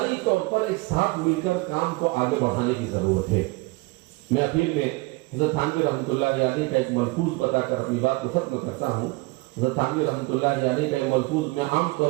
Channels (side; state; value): left; quieter; 24.1 dB